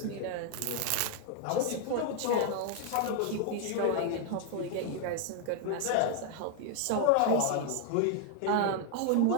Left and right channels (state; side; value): different; both; correlation 0.00